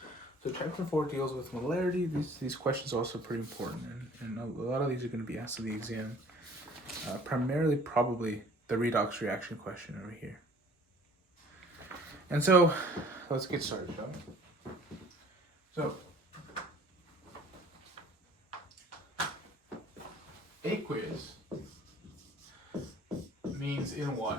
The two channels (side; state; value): both; normal; correlation 0.52